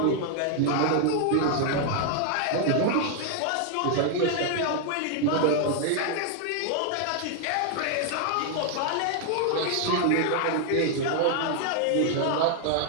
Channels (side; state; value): both; different; correlation 0.00